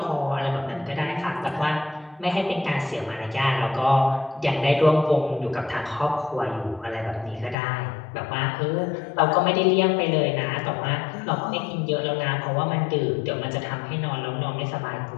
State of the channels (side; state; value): right; drops out; at 7.6 s